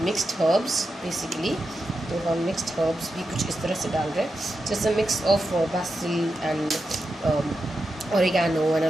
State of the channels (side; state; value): both; normal; correlation 0.89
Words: mixed herbs basically. तो हम मिक्स्ड हर्ब्स भी कुछ इस तरह से डाल रहे हैं, जैसे mix of Basil and oregano and a